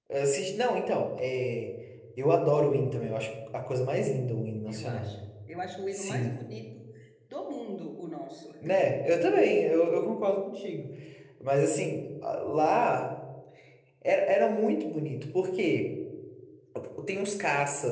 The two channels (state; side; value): identical; both; correlation 1.00